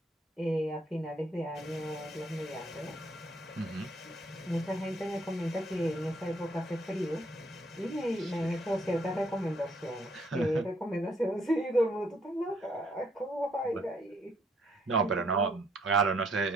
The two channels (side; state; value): both; normal; correlation 0.68